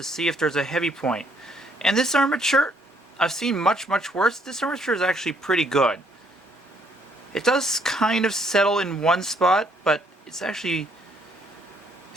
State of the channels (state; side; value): normal; both; correlation 0.67